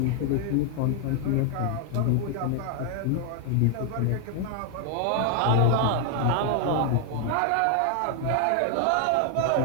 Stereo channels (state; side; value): different; both; correlation 0.00